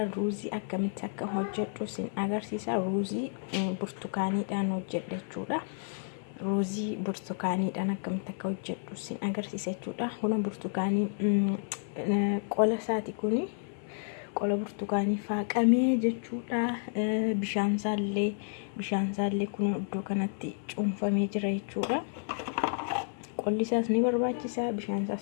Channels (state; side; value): silent; right; 57 dB below the other